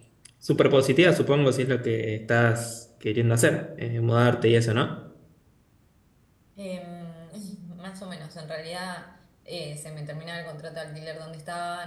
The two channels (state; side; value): identical; both; correlation 1.00